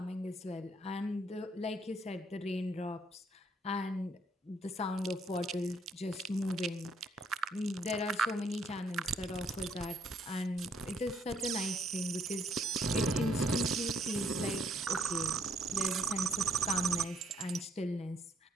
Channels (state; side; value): normal; both; correlation 0.69